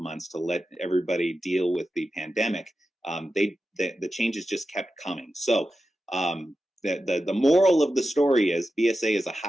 to let everybody deal with the pandemic. The changes just kept coming. So the moral of the story is BSA is a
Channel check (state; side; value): normal; both; correlation 0.91